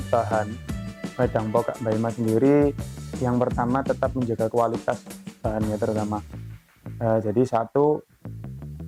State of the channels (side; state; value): both; identical; correlation 1.00